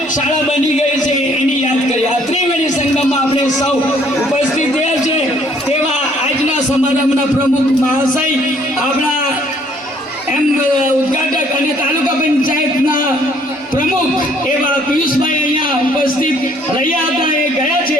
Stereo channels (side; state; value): both; normal; correlation 0.62